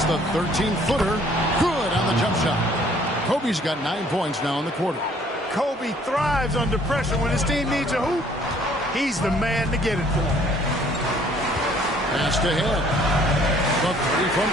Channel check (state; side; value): normal; both; correlation 0.59